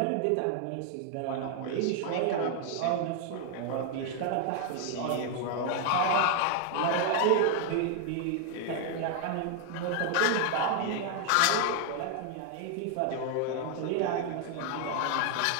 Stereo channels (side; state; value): both; different; correlation 0.00